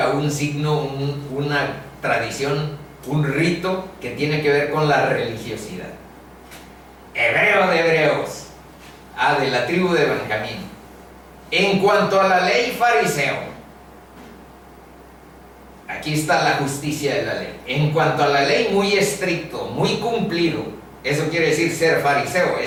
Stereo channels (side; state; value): both; identical; correlation 1.00